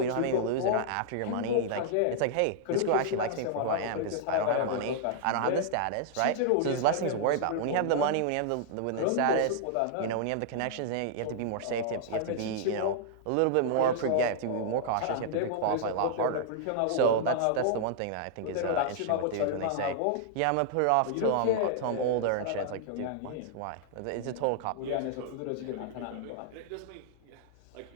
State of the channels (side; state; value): both; different; correlation -0.01